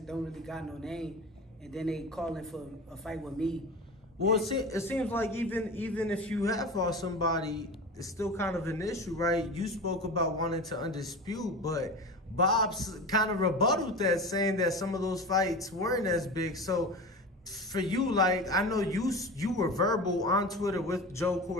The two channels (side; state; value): both; normal; correlation 0.30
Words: don't really got no name. And then they calling for a fight with me. Well, it seems like even if you have fought somebody, it's still kind of an issue, right? You spoke about wanting to undispute, but Bob's kind of rebutted that, saying that some of those fights weren't as big. So for you, like, I know you were verbal on Twitter with Joe